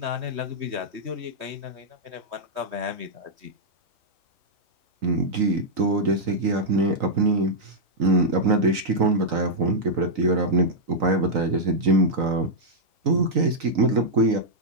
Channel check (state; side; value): late; left; 3.9 ms